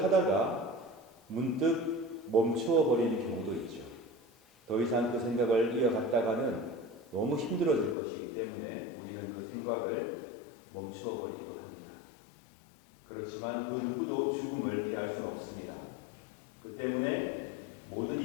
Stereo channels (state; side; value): drops out; right; at 8.0 s